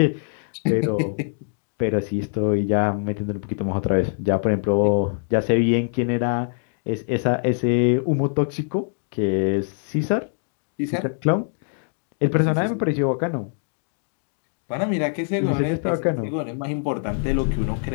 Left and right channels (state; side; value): silent; right; digital silence